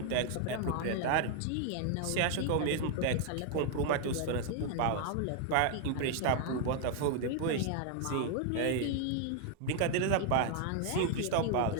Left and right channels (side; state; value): both; different; correlation 0.00